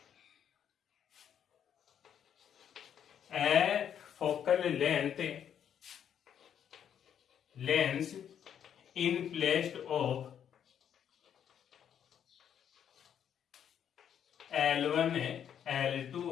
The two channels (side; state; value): right; quieter; 9.0 dB